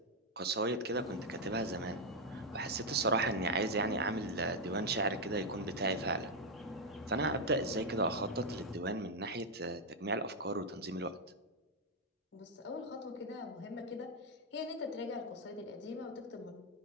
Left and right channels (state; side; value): normal; both; correlation 0.01